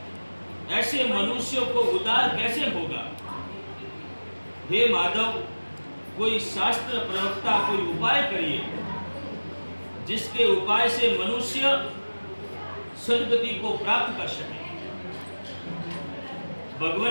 ऐसे मनुष्यों को उद्धार कैसे होगा? हे माधव, कोई शास्त्र प्रवक्ता कोई उपाय करिए जिसके उपाय से मनुष्य सद्गति को प्राप्त कर सके।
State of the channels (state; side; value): inverted; both; correlation -1.00